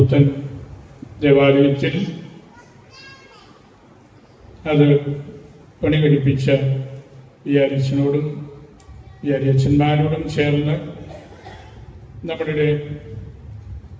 ദേവാലയത്തിൽ അത് പണികഴിപ്പിച്ച വികാരിച്ചനോടും വികാരിയച്ഛന്മാരോടും ചേർന്ന് നമ്മുടെ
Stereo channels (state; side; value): identical; both; correlation 1.00